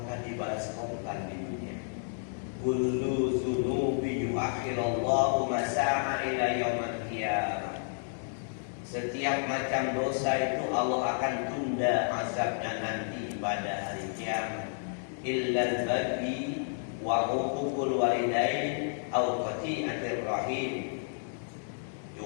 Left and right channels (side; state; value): right; silent; digital silence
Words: dibalas korban di dunia. Kullu dzunubi yuakhirallahu masa'a ila yaumil qiyamah. Setiap macam dosa itu Allah akan tunda azabnya nanti pada hari kiamat. Illa al-baghi wa uququl walidain aw qati'atir rahim.